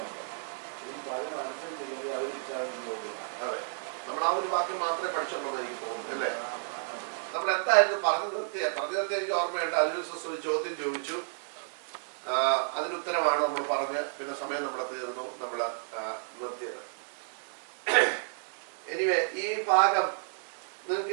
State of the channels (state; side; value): silent; left; digital silence